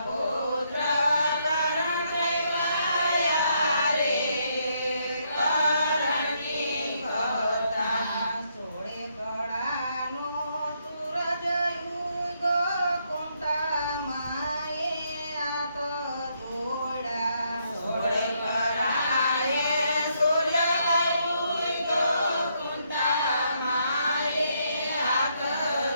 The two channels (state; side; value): inverted; both; correlation -0.74